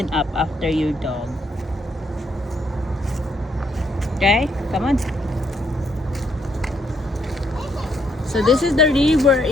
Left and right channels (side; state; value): both; normal; correlation 0.73